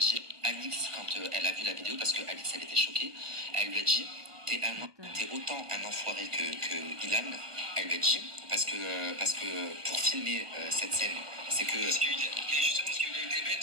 Alix quand elle a vu la vidéo, parce que Alix, elle était choquée. Elle lui a dit, t'es autant un enfoiré que Ilan. Elle lui a dit, parce que pour filmer cette scène, c'est que... Parce qu'il a justement ce qu'il a été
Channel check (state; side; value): late; left; 1.2 ms